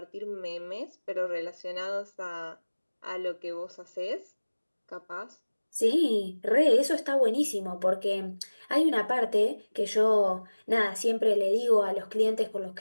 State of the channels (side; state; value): both; inverted; correlation -1.00